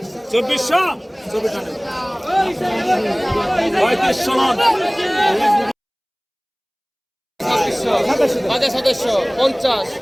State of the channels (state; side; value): identical; both; correlation 1.00